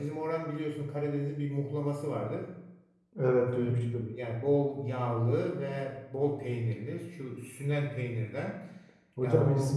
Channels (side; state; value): both; identical; correlation 1.00